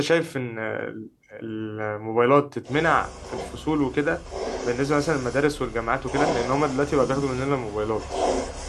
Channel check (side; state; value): both; identical; correlation 1.00